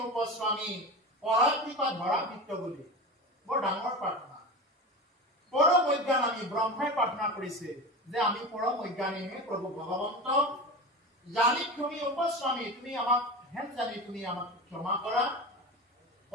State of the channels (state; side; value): normal; both; correlation 0.28